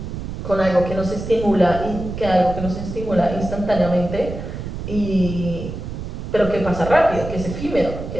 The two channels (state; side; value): noise; right; rumble, 7 dB below the sound